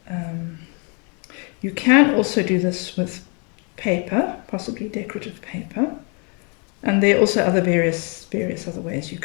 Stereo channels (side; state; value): right; quieter; 35.8 dB